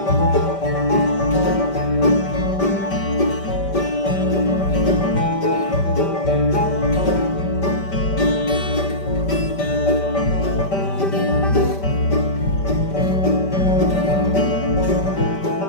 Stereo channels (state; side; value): late; right; 5.1 ms